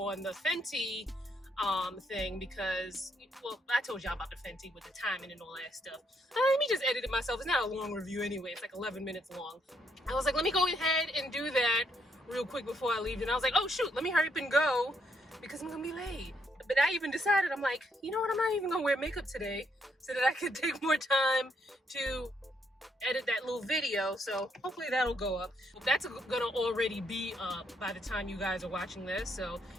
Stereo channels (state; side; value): normal; both; correlation 0.74